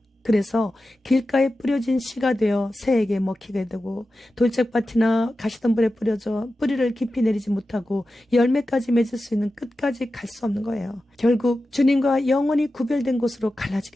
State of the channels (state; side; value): normal; both; correlation 0.93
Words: 그래서 길가에 뿌려진 씨가 되어 새에게 먹히게 되고 돌짝밭이나 가시덤불에 뿌려져 뿌리를 깊이 내리지 못하고 열매까지 맺을 수 있는 끝까지 갈 수 없는 거예요. 결국 주님과 영원히 구별된 곳으로